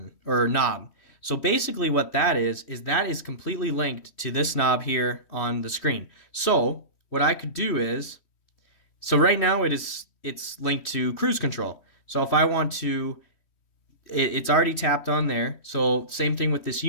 or knob. So basically what that is that is completely linked to this knob here on the screen. So what I could do is, so right now it's linked to cruise control. So if I want to, it's already tapped on there. So same thing with this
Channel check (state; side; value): late; right; 3.1 ms